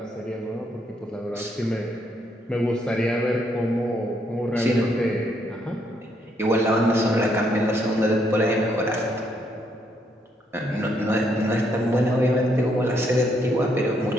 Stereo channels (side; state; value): both; normal; correlation 0.73